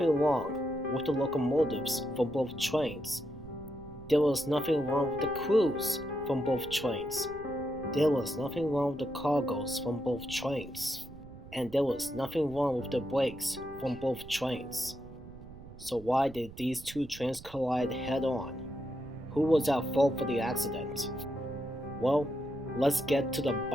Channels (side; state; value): right; noise; rumble, 16 dB below the sound